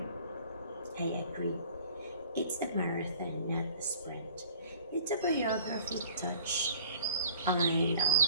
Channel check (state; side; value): inverted; both; correlation -0.50